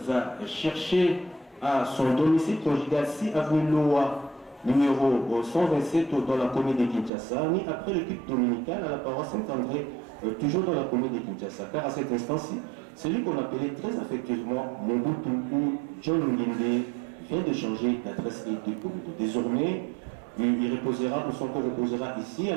à chercher à son domicile conjugal 6 avenue Loa, numéro 127 dans la commune de Kinshasa, ni après le culte dominical à la paroisse Saint-André, toujours dans la commune de Kinshasa, car à cet instant-ci, celui qu'on appelait très affectueusement Mobutu ou John Nginde vient de changer d'adresse et de commune. Désormais, il reposera, ou son corps reposera ici à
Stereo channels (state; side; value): drops out; left; at 7.1 s